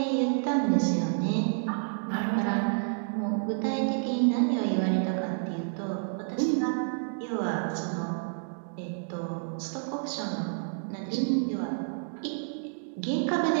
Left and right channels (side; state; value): left; silent; digital silence